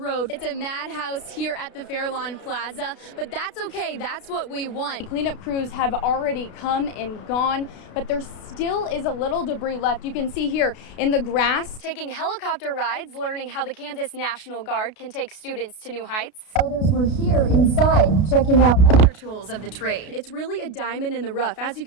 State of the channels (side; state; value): right; late; 33 ms